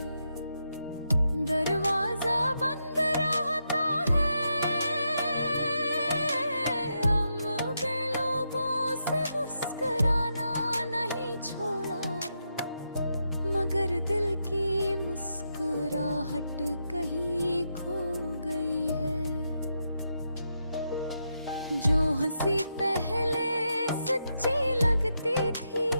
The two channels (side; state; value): both; inverted; correlation -0.83